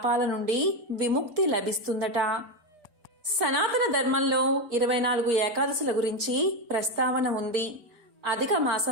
నుండి విముక్తి లభిస్తుందట. సనాతన ధర్మంలో 24 ఏకాదశుల గురించి ప్రస్తావన ఉంది. అధిక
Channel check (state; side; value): late; left; 4.6 ms